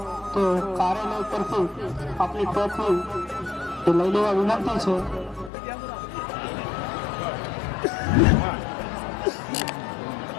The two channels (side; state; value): right; drops out; at 5.5 s